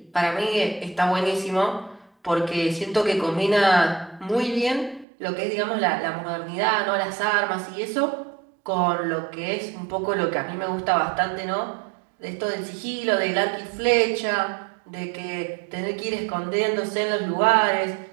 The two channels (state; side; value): drops out; left; at 5.1 s